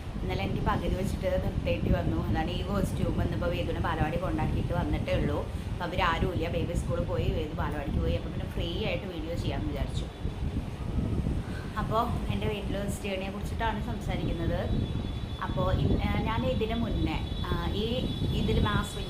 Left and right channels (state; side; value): identical; both; correlation 1.00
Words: ഇന്നലെ എനിക്ക് പകുതി വെച്ചിട്ട് നിർത്തേണ്ടി വന്നു. അതാണ് ഈ കോസ്റ്റ്യൂം. ഇന്നിപ്പോൾ വേദുവിനെ ബാലവാടി കൊണ്ടാക്കിയിട്ട് വന്നിട്ടേ ഉള്ളൂ. അപ്പോൾ അവരാരുമില്ല. ബേബി സ്കൂളിൽ പോയി, വേദു ബാലവാടിക്ക് പോയി. അപ്പോൾ പിന്നെ ഫ്രീ ആയിട്ട് വീഡിയോ ചെയ്യാമെന്ന് വിചാരിച്ചു. അപ്പോൾ എൻ്റെ വെയിറ്റ് ലോസ് ജേണിയെ കുറിച്ചിട്ടാണ് സംസാരിക്കുന്നത്. അപ്പോൾ ഞാൻ ഇതിന് മുന്നേ ഇതിൽ മാസ്